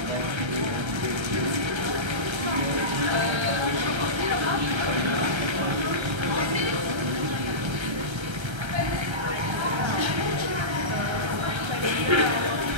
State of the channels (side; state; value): left; late; 1.3 ms